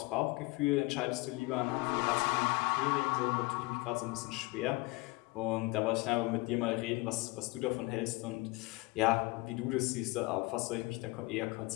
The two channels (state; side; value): quieter; right; 24.0 dB